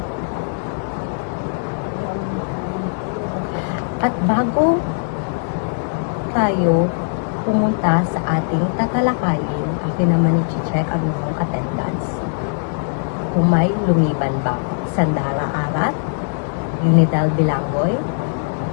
At bago tayo pumunta sa ating tatalakayin, akin naman i-check ang inyong attendance. Kung may lumiban ba, Sandara Arat, Ginidal Bilangoy,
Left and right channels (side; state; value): right; silent; 64 dB below the other